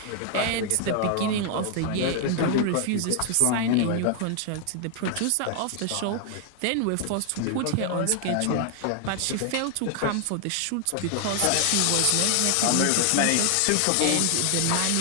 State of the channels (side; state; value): both; different; correlation 0.00